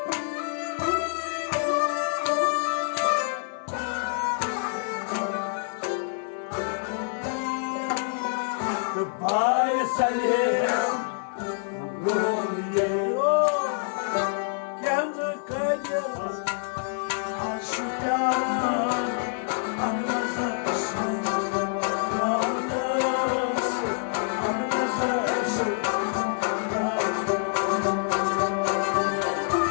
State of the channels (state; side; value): silent; right; 60 dB below the other